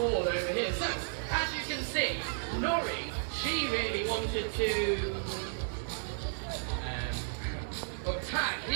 over here. So, as you can see, Nori, she really wanted to... but Tan,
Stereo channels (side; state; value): left; silent; digital silence